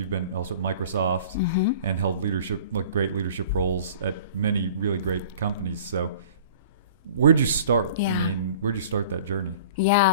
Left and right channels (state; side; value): inverted; both; correlation -0.45